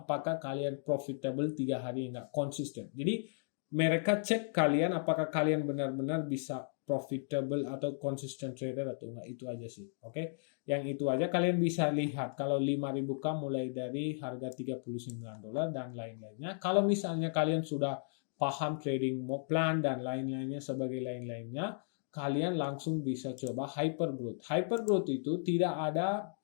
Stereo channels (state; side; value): silent; right; digital silence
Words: kalian profitable 3 hari enggak, konsisten. Jadi mereka cek kalian apakah kalian benar-benar bisa profitable atau consistent trader atau enggak. Itu aja sih, oke? Yang itu aja kalian bisa lihat kalau 5.000K mulai dari harga $39 dan lain-lainnya. Kalau misalnya kalian sudah paham trading plan dan lain-lainnya sebagai lain-lainnya, kalian langsung bisa coba hypergrowth. Hypergrowth itu tidak ada